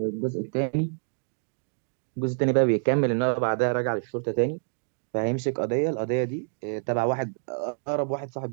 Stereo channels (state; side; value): silent; left; digital silence